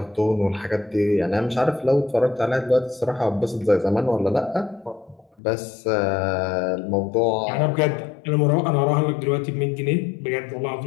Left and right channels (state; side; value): drops out; right; at 5.2 s